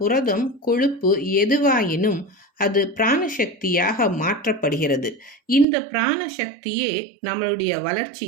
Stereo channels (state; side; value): drops out; left; at 5.7 s